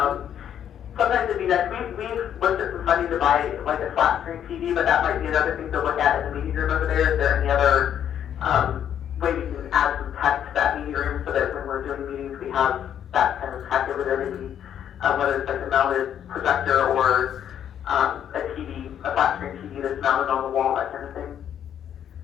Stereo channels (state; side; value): quieter; right; 9.5 dB